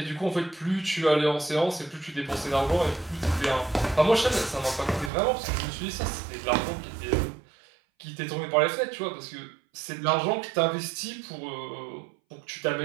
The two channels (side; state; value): left; drops out; at 5.1 s